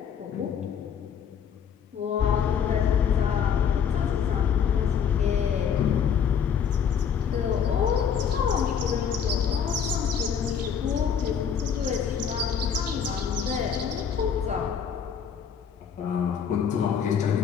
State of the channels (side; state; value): right; quieter; 7.5 dB